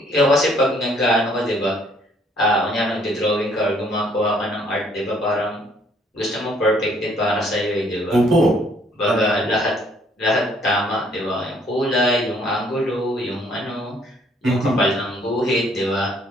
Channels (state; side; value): normal; both; correlation 0.64